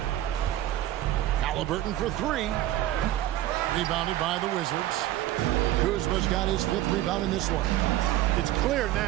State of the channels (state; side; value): quieter; left; 14.1 dB